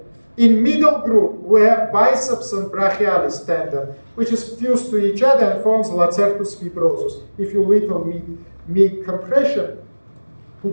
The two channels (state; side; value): inverted; both; correlation -1.00